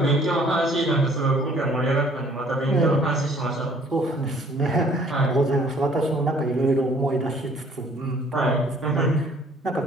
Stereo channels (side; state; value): both; normal; correlation 0.57